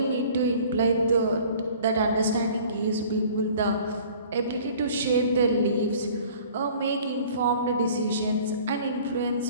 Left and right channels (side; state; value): both; inverted; correlation -0.49